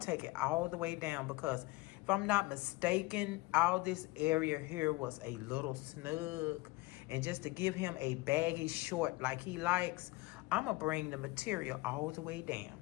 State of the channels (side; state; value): right; quieter; 22.0 dB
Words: take it all the way down, because if I'm not mistaken, all this area here was a little snug. And just to give him a baggy short like he likes, I'm going to bring the material all the way down,